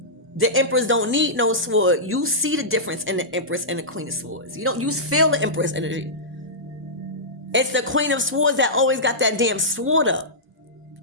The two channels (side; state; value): both; normal; correlation -0.14